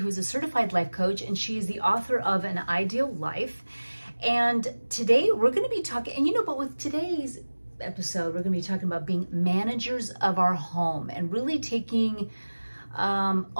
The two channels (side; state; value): both; inverted; correlation -1.00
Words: a certified life coach, and she's the author of An Ideal Life. And today we're going to be talking, and but with today's episode, we're going to be talking about being managers of our home and really taking